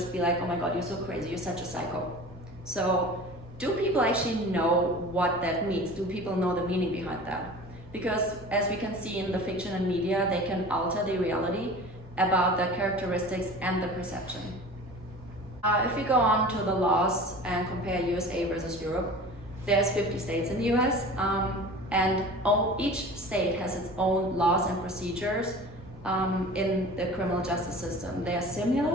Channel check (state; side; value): normal; both; correlation 0.39